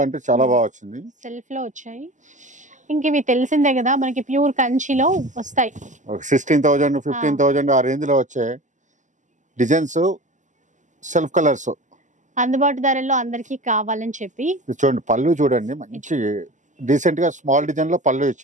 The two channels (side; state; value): left; late; 0.36 ms